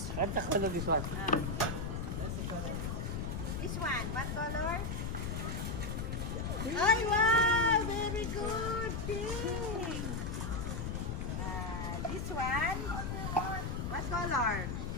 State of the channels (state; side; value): noise; left; rumble, 3 dB below the sound